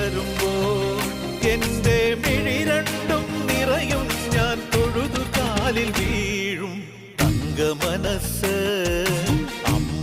എന്റെ മിഴി രണ്ടും നിറയും ഞാൻ തൊഴുതു കാലിൽ വീഴും തങ്കമനസ് അമ്മ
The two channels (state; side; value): identical; both; correlation 1.00